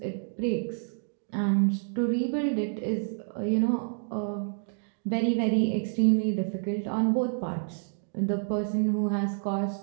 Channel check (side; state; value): left; silent; digital silence